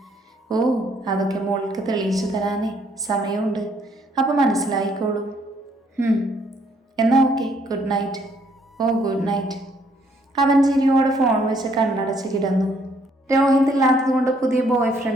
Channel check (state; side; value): normal; both; correlation 0.67